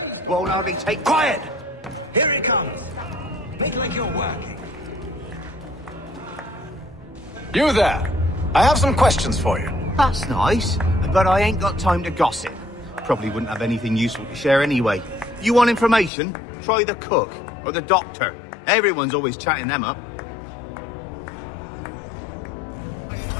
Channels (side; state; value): right; drops out; at 16.1 s